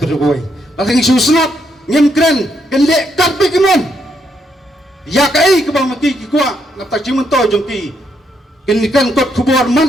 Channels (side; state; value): both; normal; correlation 0.76